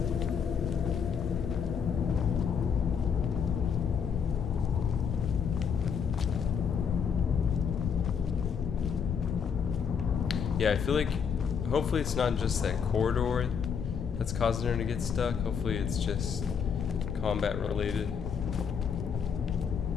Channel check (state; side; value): quieter; right; 6.9 dB